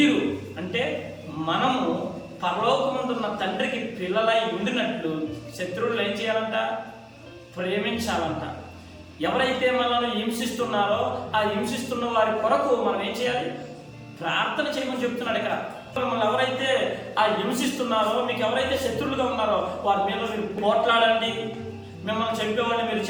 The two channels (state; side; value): identical; both; correlation 1.00